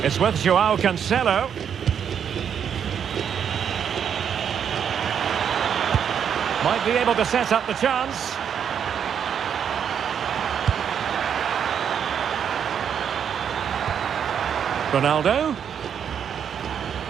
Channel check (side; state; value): left; quieter; 8.1 dB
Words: It's with João Cancelo. Might be able to set up the chance. Ronaldo.